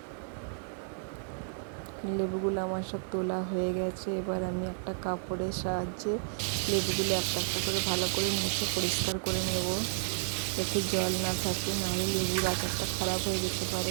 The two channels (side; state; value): left; silent; digital silence